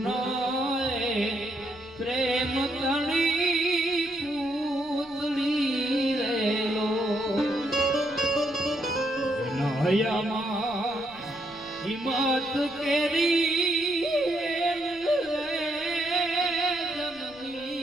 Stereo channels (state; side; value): noise; left; rumble, 25 dB below the sound